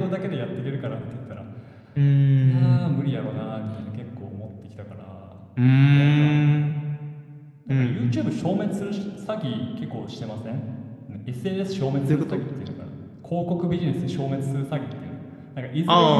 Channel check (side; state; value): both; identical; correlation 1.00